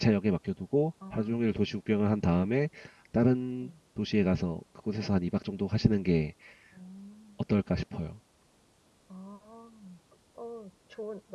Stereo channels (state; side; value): identical; both; correlation 1.00